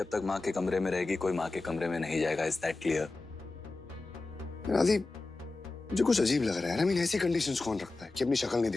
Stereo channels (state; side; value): quieter; right; 3.4 dB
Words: तक माँ के कमरे में रहेगी, कोई माँ के कमरे में नहीं जाएगा। Is that clear? राधी, मुझे कुछ अजीब लग रहा है। आई मीन, ऐसी कंडीशंस कौन रखता है कि अपनी शक्ल नहीं